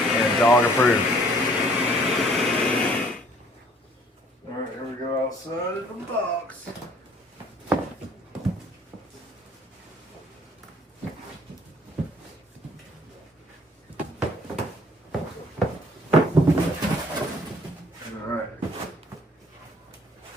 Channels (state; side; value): normal; both; correlation 0.58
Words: and dog approved. Alright, here we go outside of the box. Alright.